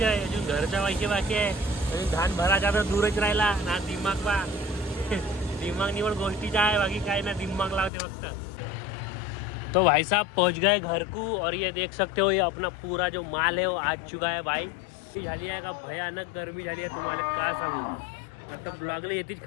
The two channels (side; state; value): right; drops out; at 7.9 s